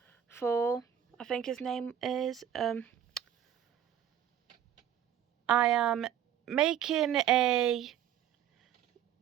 4. I think his name is. I am making a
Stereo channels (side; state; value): left; quieter; 9.9 dB